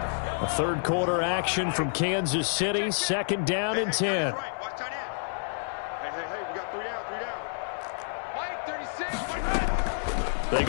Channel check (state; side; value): silent; right; 59 dB below the other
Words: A 3rd quarter action from Kansas City. 2nd down and 10. They